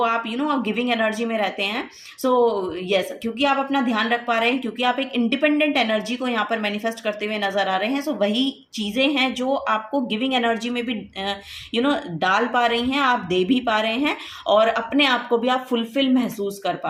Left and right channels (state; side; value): identical; both; correlation 1.00